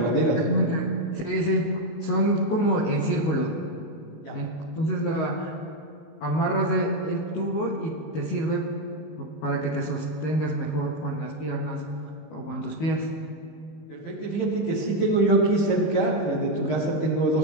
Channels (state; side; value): late; right; 19 ms